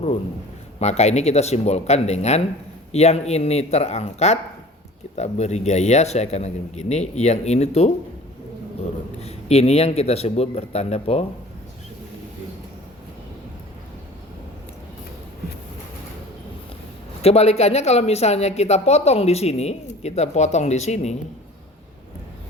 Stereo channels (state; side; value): normal; both; correlation 0.44